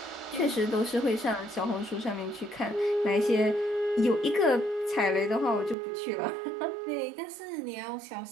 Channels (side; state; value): left; drops out; at 5.8 s